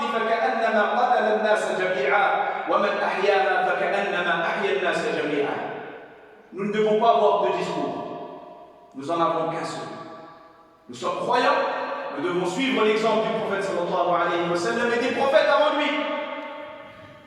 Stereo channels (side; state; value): both; identical; correlation 1.00